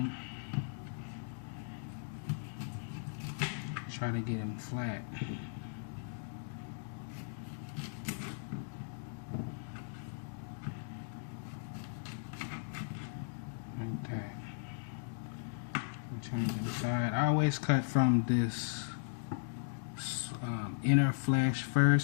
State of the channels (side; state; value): right; silent; digital silence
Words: Try to get them flat. Like that. Turn it inside. I always cut from this inner flesh